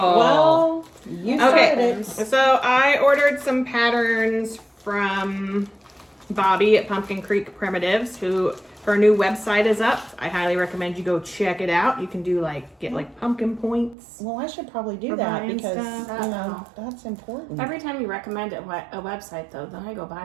Well, you started it. So I ordered some patterns from Bobby at Pumpkin Creek Primitives, who her new website is up. I highly recommend you go check it out. You can get pumpkin points. Well, I should probably do For that buying because stuff. that's important. Every time you recommend a website, though, then I go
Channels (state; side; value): drops out; left; at 14.0 s